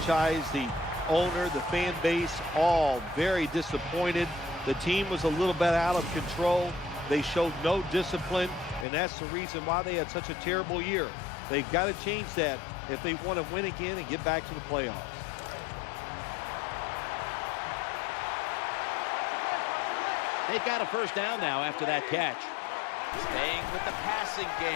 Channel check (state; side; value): drops out; right; at 8.8 s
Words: the owner, the fan base, all very disappointed. The team was a little bit out of control. They showed no discipline, and that's the reason why they had such a terrible year. They've got to change that if they want to win again and get back to the playoffs. They've got a first down now after that catch. Staying with the passing